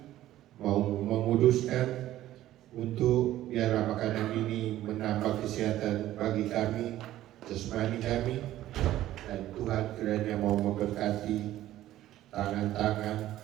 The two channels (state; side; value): quieter; left; 14.0 dB